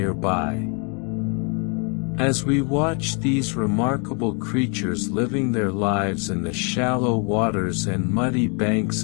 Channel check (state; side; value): quieter; right; 37.2 dB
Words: As we watch these remarkable creatures living their lives in the shallow waters and muddy banks